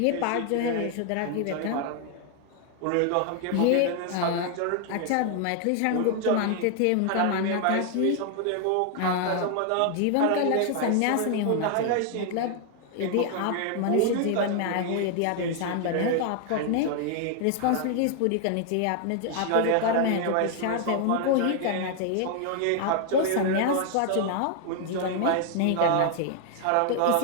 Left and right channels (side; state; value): both; different; correlation 0.00